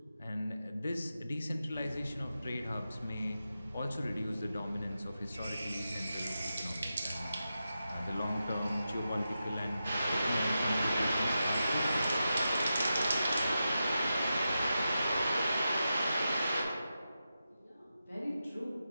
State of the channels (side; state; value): both; inverted; correlation -0.90